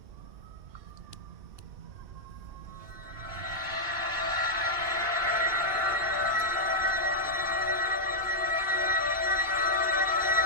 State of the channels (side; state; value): left; late; 2.7 ms